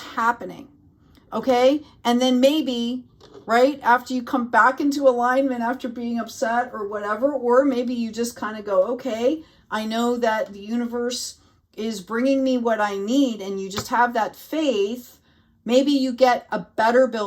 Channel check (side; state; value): both; identical; correlation 1.00